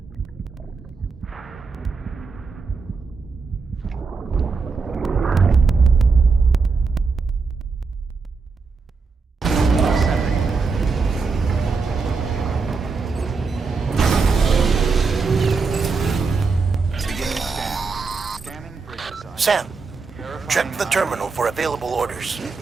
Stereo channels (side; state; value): left; quieter; 4.6 dB